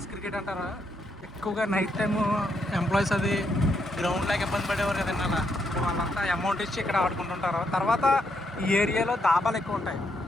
క్రికెట్ అంటారు. ఎక్కువగా నైట్ టైము ఎంప్లాయీస్ అది గ్రౌండ్ లాగా ఇబ్బంది పడేవారు కదండి. అలా వాళ్ళంతా అమౌంట్ ఇచ్చి ఇక్కడ ఆడుకుంటుంటారు. తర్వాత ఈ ఏరియాలో దాబాలు ఎక్కువ ఉంటాయి,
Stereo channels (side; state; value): both; normal; correlation 0.77